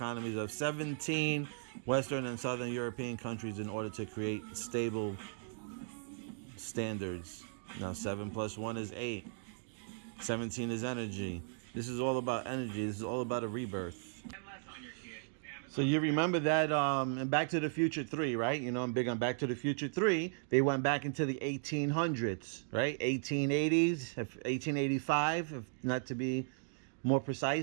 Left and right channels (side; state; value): left; silent; digital silence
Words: of 17 Western and Southern European countries in order to create stable standards. Now, 7 plus 1 is 8. 17 is energy. This is all about energy. This is all about a rebirth. So you remember that in Back to the Future 3, right? You know, I'm big on Back to the Future 3. They went back into the 1800s, right? 1880s, 1885, if not to be more